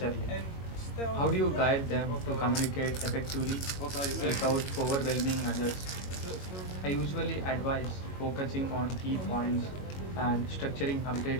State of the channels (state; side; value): late; right; 22 ms